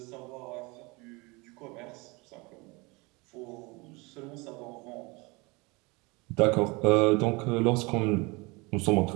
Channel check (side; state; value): left; quieter; 26.2 dB